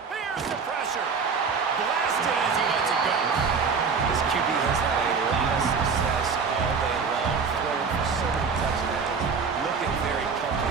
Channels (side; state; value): left; quieter; 5.4 dB